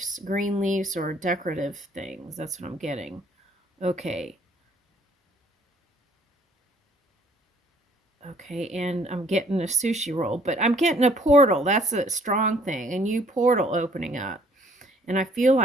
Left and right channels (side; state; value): both; normal; correlation 0.59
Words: green leaves, or decorative things. That's what I'm getting. Okay. Okay, and I'm getting a sushi roll, but I'm getting a portal. That's a strong thing. A new portal opening up. And I feel